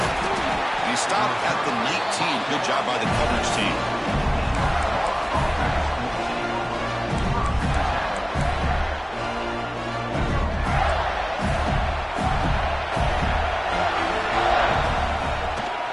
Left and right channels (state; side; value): identical; both; correlation 1.00